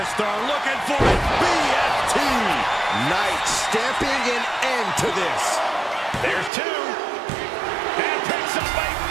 looking for it. BFT. Knight stamping an end to this. There's 2. And picks up a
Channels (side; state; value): left; drops out; at 6.5 s